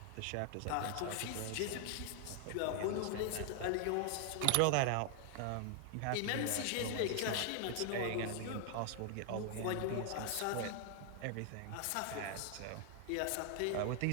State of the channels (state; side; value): different; both; correlation 0.00